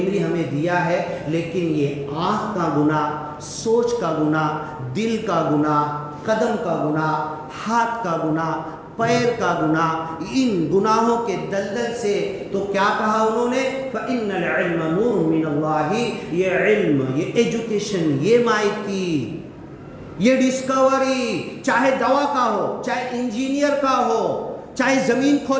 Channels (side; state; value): both; identical; correlation 1.00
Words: ہمیں دیا ہے، لیکن یہ آنکھ کا گناہ، سوچ کا گناہ، دل کا گناہ، قدم کا گناہ، ہاتھ کا گناہ، پیر کا گناہ، ان گناہوں کے دلدل سے تو کیا کہا انہوں نے، فَإِنَّ الْعِلْمَ نُورٌ مِّنَ اللَّهِ، یہ علم، یہ ایجوکیشن، یہ مائٹی، یہ ڈسکوری، چاہے دوا کا ہو، چاہے انجینئر کا ہو، چاہے زمین